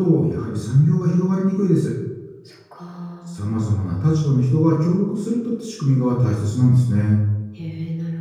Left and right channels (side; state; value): both; identical; correlation 1.00